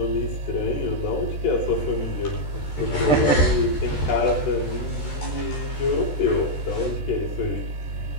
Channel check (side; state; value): right; late; 14 ms